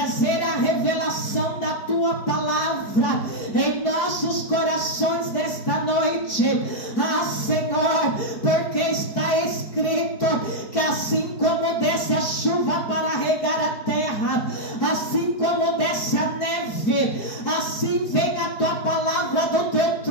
a revelação da tua palavra em nossos corações nesta noite. Ah, Senhor, porque está escrito que assim como desce a chuva para regar a terra, assim como desce a neve, assim vem a tua palavra do teu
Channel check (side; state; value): right; late; 4.6 ms